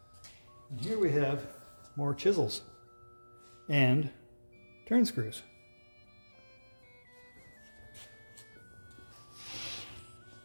And here we have more chisels and turn screws.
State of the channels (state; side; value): inverted; both; correlation -1.00